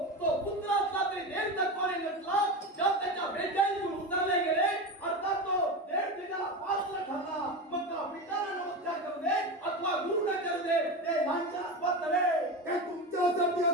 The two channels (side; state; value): both; normal; correlation 0.22